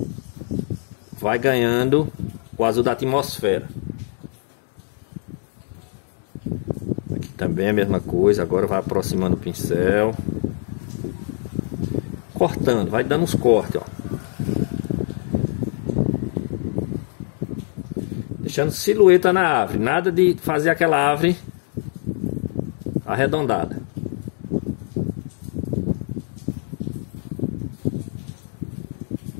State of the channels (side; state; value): right; silent; 59 dB below the other